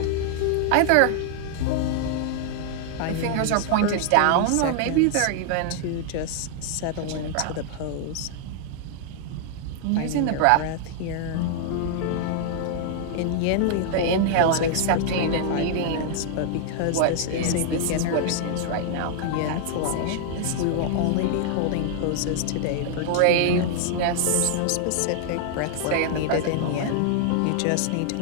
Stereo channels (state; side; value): different; both; correlation 0.00